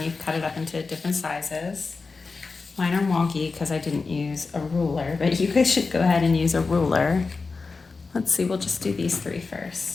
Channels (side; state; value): right; quieter; 4.3 dB